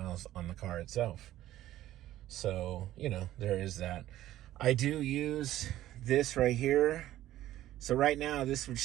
on the car itself. So, you know, there is that. I do use this right here. So right now this would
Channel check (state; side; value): quieter; left; 13.9 dB